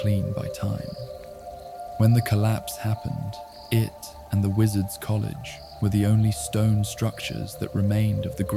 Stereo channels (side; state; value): both; identical; correlation 1.00